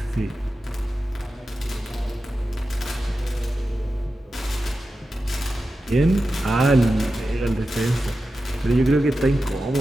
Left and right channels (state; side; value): normal; both; correlation 0.92